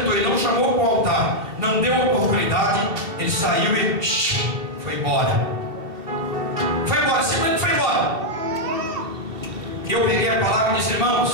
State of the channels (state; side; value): late; left; 2.7 ms